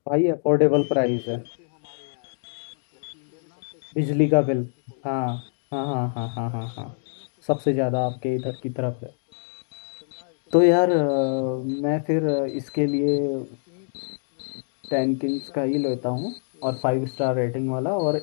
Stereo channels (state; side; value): silent; right; digital silence